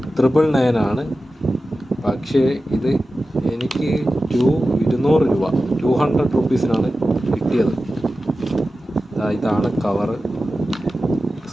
999 ആണ്. പക്ഷേ ഇത് എനിക്ക് 200 രൂപ 200 റുപ്പീസിനാണ് കിട്ടിയത്. ഇതാണ് കവറ്,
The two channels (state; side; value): normal; both; correlation 0.94